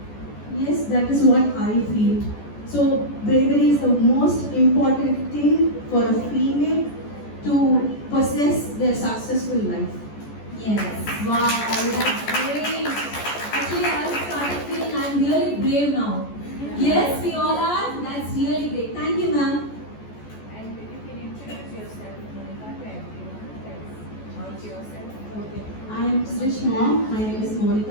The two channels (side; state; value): right; late; 14 ms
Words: Yes, that is what I feel. So bravery is the most important thing for a female to possess their successful life. Yes. Wow, that's great. Actually, I started feeling I'm really brave now. Yes, we all are. That's really great. Thank you, ma'am. And you can introduce yourself, Monica, to everyone. About yourself. Okay. I am Srish mom. My name is